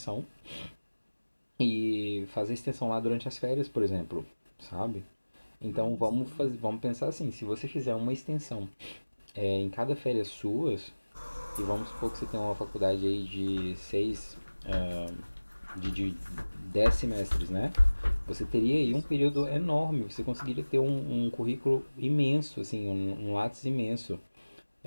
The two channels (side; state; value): both; inverted; correlation -1.00